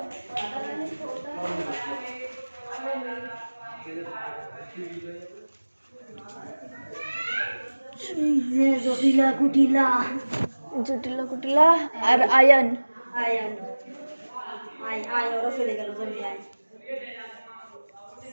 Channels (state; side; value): inverted; both; correlation -1.00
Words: राधा रानी জটিলা কুটিলা জটিলা কুটিলা আর আয়ন। আয়ন আয় আয় ওরা চলে গেল জমি আয়